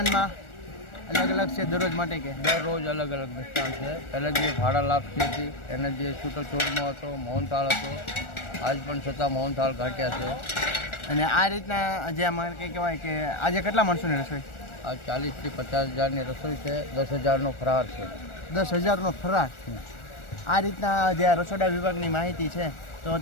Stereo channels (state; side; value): late; right; 1.4 ms